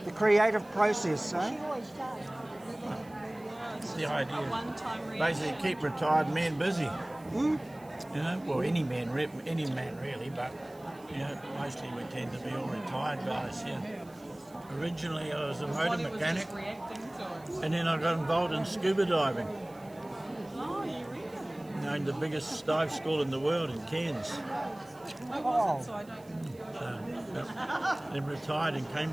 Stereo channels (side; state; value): right; noise; hiss, 26 dB below the sound